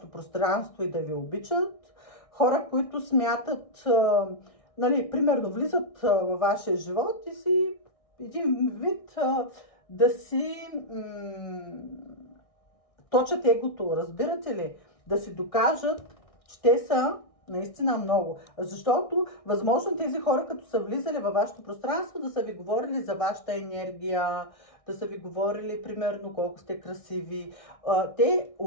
пространство и да ви обичат. Хора, които смятат, нали, примерно влизат във вашия живот и си един вид да си точат егото, разбирате ли? Да си докажат, че те са наистина много. Защото, възможно тези хора, като са влизали във вашето пространство, да са ви говорили за вашата енергия, да са ви говорили, примерно, колко сте красиви. Те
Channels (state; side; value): late; right; 1.6 ms